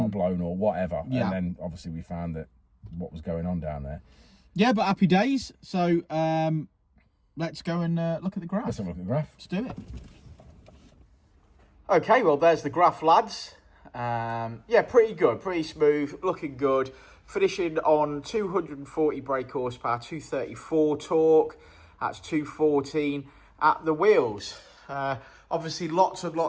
blown or whatever. Yeah. And then obviously we found that what was going on down there. Yeah, but happy days. So let's go and look at the graph. Let's have a look at the graph. Let's do it. Okay, well, there's the graph, lads. Yeah, pretty good, pretty smooth, looking good. Finishing on 240 brake horsepower, 234 torque. That's 214 at the wheels. Obviously, lots of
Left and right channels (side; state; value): both; identical; correlation 1.00